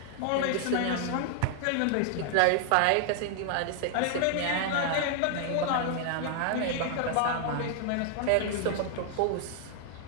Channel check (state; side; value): different; both; correlation 0.00